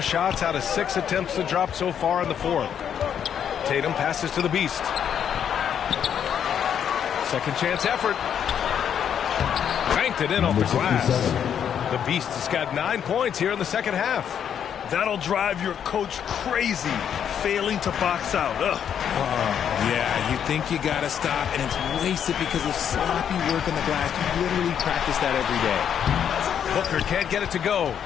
out of 6 attempts to drop so far in the 4th. Tatum passes to the Beast. Second chance effort. Banked it in off the glass. The Beast has got 9 points here in the second half. That'll drive your coach crazy, failing to box out. Yeah, you think you got to stop, and it's wasted because of sloppy work on the glass. You literally practice that every day. Booker can't get it to go.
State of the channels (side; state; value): right; quieter; 8.7 dB